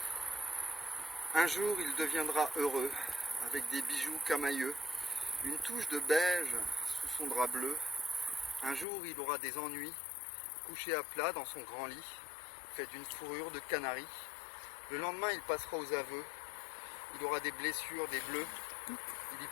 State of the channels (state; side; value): drops out; right; at 8.8 s